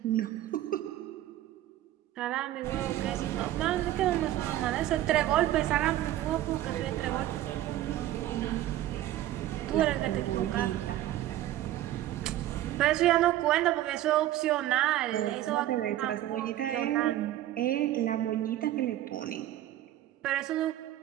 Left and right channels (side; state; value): left; quieter; 13.7 dB